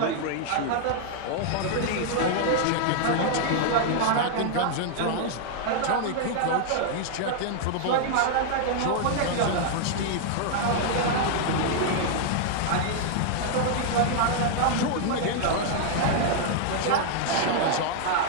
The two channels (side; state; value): both; different; correlation -0.01